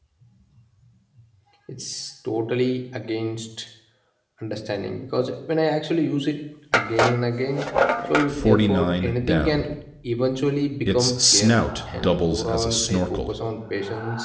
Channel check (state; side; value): identical; both; correlation 1.00